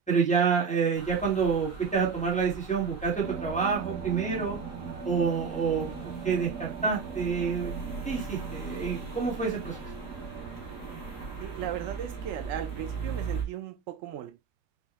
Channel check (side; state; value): left; quieter; 5.6 dB